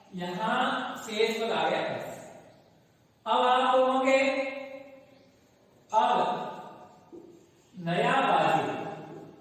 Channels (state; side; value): identical; both; correlation 1.00